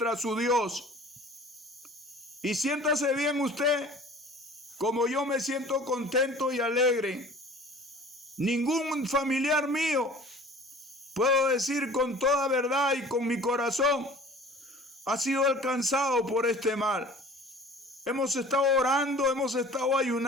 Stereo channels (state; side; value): normal; both; correlation 0.46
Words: su Dios. Y siéntase bien usted, como yo me siento contento y alegre. Ningún familiar mío, puedo decir con toda verdad y con mi corazón, ha sido alcanzado por este mal. Hemos estado orando, hemos estado